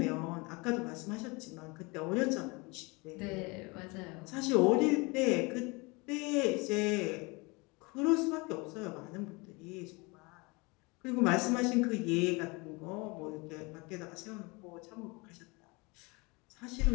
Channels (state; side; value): quieter; right; 26.9 dB